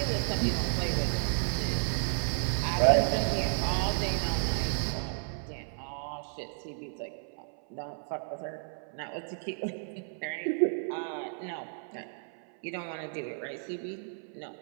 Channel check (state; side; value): silent; left; 56 dB below the other